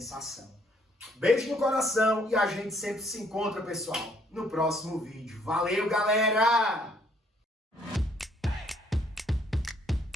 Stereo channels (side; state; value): both; normal; correlation 0.66